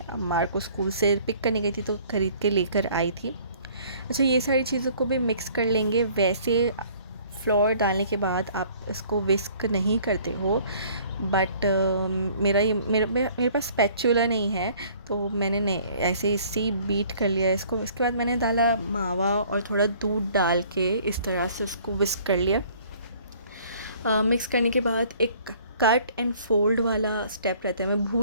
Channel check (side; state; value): both; inverted; correlation -0.55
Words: मार को स्कूल से पिक करने गई थी तो ख़रीद के लेकर आई थी. अच्छा, ये सारी चीज़ों को भी मिक्स कर लेंगे. वैसे फ्लोर डालने के बाद आप इसको विस्क नहीं करते हो, बट मेरे पास स्पैचुला नहीं है, तो मैंने ऐसे इससे बीट कर लिया इसको. इसके बाद मैंने डाला मावा और थोड़ा दूध डाल के इस तरह से उसको विस्क कर लिया. मिक्स करने के बाद एक कट एंड फोल्ड वाला स्टेप रहता है, मैं